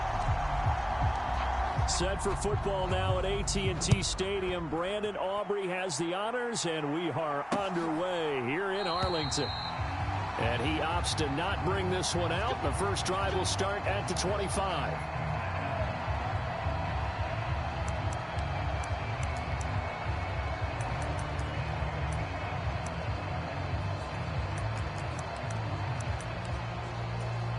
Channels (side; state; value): both; identical; correlation 1.00